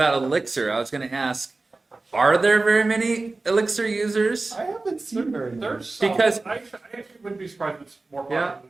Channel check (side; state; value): left; quieter; 3.4 dB